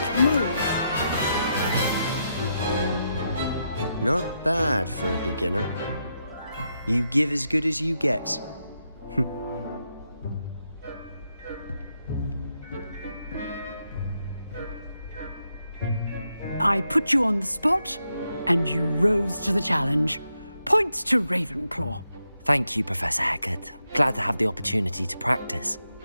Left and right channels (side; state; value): both; inverted; correlation -0.82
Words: move. Not bad for a beginner. You give as good as you get. I put you on the spot, and you rose to the challenge. Points to Ravenclaw. Thank you, Professor Hecat. Glad to have the opportunity to practice.